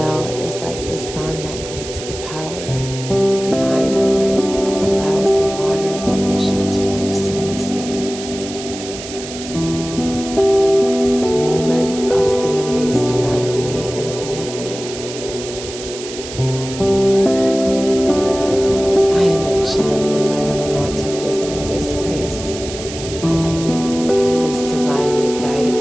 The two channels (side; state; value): right; noise; hiss, 11 dB below the sound